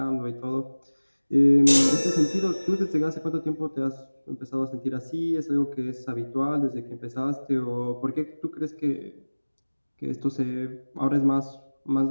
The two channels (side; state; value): both; inverted; correlation -1.00